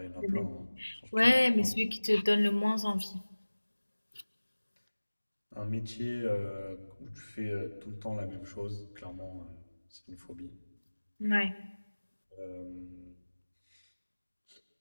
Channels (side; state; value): both; inverted; correlation -1.00